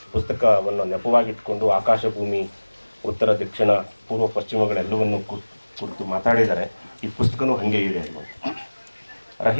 ಪುಸ್ತಕವನ್ನು ನೆಪವಾಗಿಟ್ಕೊಂಡು ಆಕಾಶ ಭೂಮಿ, ಉತ್ತರ ದಕ್ಷಿಣ ಪೂರ್ವ ಪಶ್ಚಿಮಗಳೆಲ್ಲವನ್ನು ಕುರಿತು ಮಾತಾಡಿದ್ದಾರೆ. ಈ ಪುಸ್ತಕನೂ ಹಾಗೆ ಇದೆ.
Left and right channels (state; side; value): inverted; both; correlation -1.00